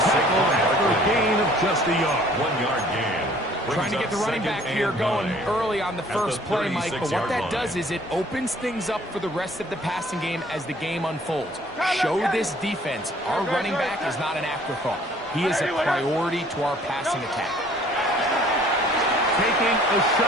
Tackle after a gain of just a yard. 1 yard gain. Trying to get the running back here going early on the first play, Mike, but what that does is it opens things up for the rest of the passing game as the game unfolds. Show this defense our running back is not an afterthought. He is a priority to our passing attack. Taking a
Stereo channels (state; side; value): normal; both; correlation 0.56